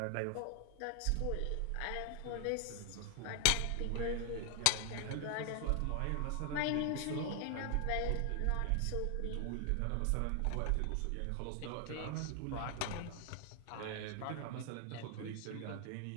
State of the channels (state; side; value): different; both; correlation 0.00